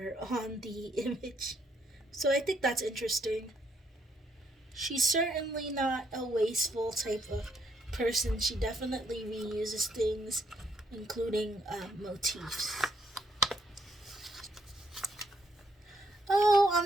on the image. So I think that's interesting. She's certainly not a wasteful type of person. She definitely reuses things, including motifs. Oh,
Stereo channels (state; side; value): normal; both; correlation 0.72